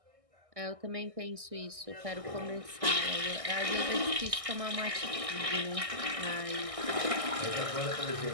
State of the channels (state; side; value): late; left; 1.6 ms